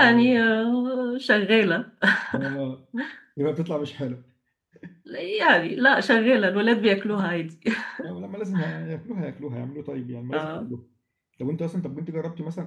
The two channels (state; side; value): identical; both; correlation 1.00